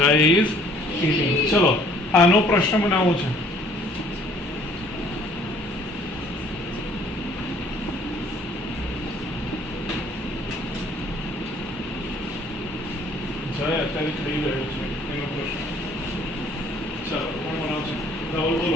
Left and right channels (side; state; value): both; normal; correlation 0.58